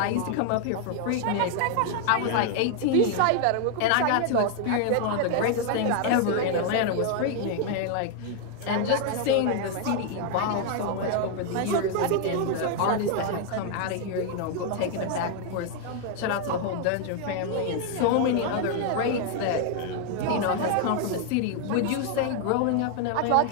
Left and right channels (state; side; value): different; both; correlation 0.00